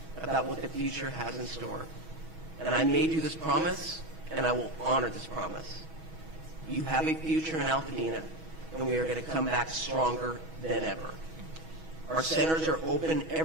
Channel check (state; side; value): late; left; 6.2 ms